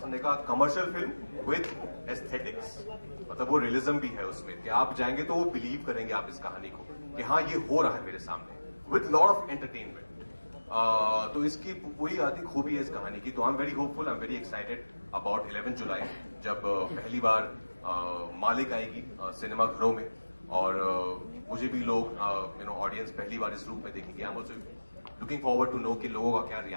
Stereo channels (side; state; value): both; inverted; correlation -1.00